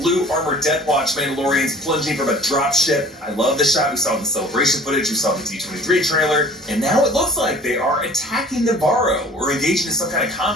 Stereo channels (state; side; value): normal; both; correlation 0.48